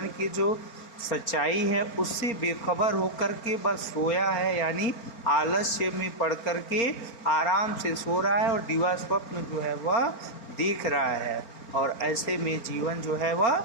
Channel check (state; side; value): late; right; 4.5 ms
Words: की जो सच्चाई है उससे बेखबर होकर के बस सोया है, यानी आलस्य में पड़ कर के आराम से सो रहा है और दिवा स्वप्न जो है वह देख रहा है। और ऐसे में जीवन जो है वह